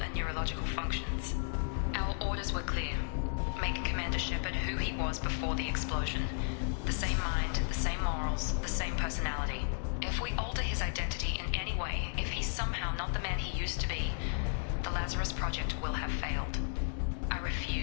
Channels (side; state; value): right; silent; digital silence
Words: neurological functions. Our orders were clear. Make Commander Shepard who he was before the explosion. The same mind, the same morals, the same personality. If we alter his identity in any way, if he's somehow not the man he used to be, the Lazarus Project will have failed. I